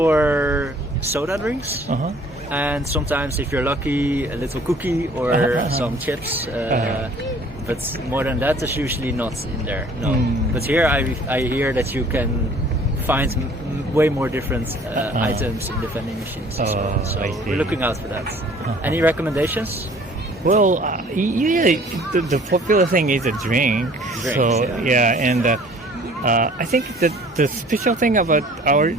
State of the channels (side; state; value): both; normal; correlation 0.53